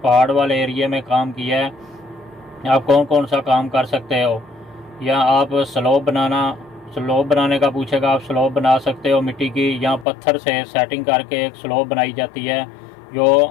पहाड़ वाले एरिया में काम किया है, आप कौन कौन सा काम कर सकते हो। या आप स्लोप बनाने का पूछेगा, आप स्लोप बना सकते हो मिट्टी की, या पत्थर से सेटिंग करके एक स्लोप बनाई जाती है जो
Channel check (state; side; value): drops out; right; at 10.1 s